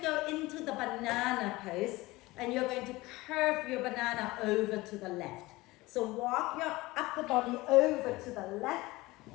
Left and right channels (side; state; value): right; quieter; 20.5 dB